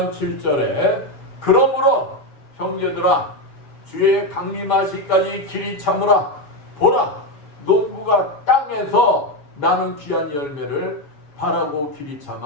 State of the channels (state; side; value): late; right; 7.1 ms